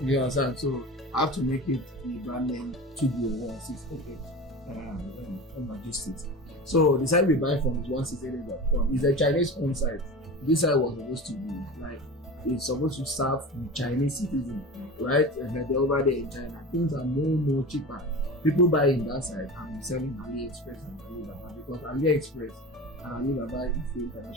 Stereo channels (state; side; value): normal; both; correlation 0.31